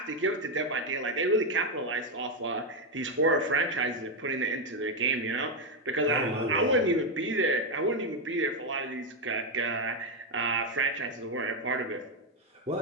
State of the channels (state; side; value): normal; both; correlation 0.05